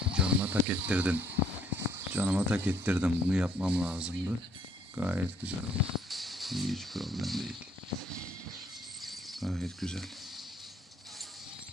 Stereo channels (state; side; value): normal; both; correlation 0.65